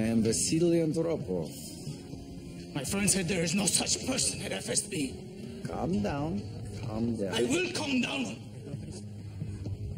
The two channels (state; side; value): identical; both; correlation 1.00